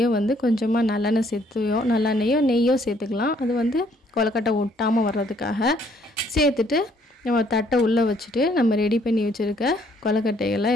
வந்து கொஞ்சமாக நல்லெண்ணெயோ நெய்யோ சேர்த்துக்கலாம். அது வந்து கொலக்கட்டை ஒட்டாமல் வர்றதுக்காக சேர்த்துட்டு நம்ம தட்டை உள்ளே வச்சுட்டு நம்ம ரெடி பண்ணி வச்சுருக்க கொலக்கட்டைகளை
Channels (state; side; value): normal; both; correlation 0.65